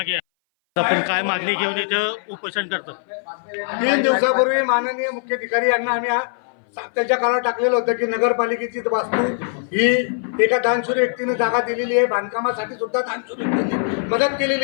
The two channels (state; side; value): silent; right; 59 dB below the other